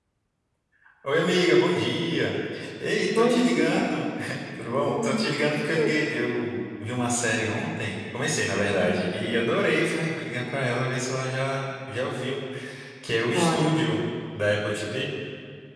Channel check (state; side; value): identical; both; correlation 1.00